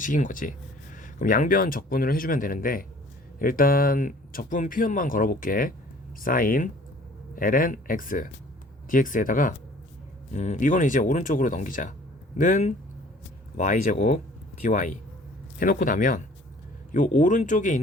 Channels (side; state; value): both; normal; correlation 0.53